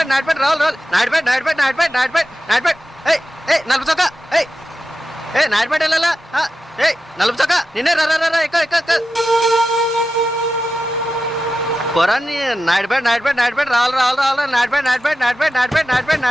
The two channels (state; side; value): normal; both; correlation 0.91